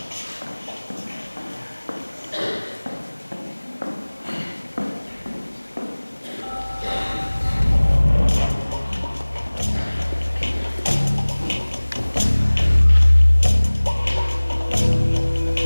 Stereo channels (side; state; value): both; inverted; correlation -1.00